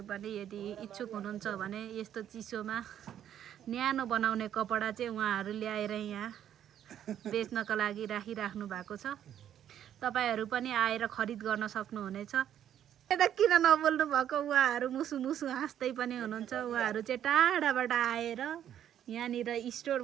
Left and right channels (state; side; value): quieter; left; 10.3 dB